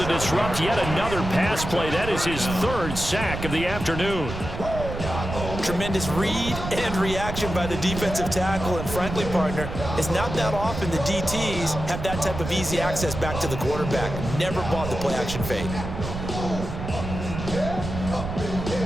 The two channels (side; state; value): right; noise; rumble, 7 dB below the sound